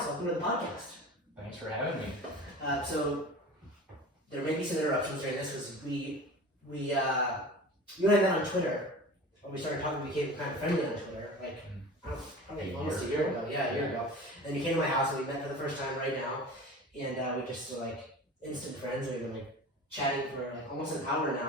Welcome to the podcast. Thanks for having me. So there may be some interruptions during this because you and I met on Twitter. When we started talking, we became kind of friendly on Twitter, probably almost a year ago. Yeah, a year ago. And you came to my house and we met for the first time right now. And we just were instant friends. We've been chatting for almost an hour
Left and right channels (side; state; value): both; normal; correlation 0.36